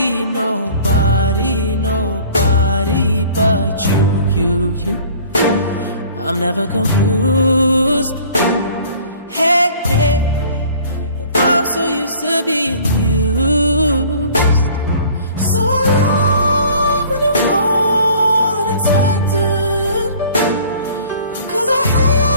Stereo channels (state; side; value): inverted; both; correlation -0.50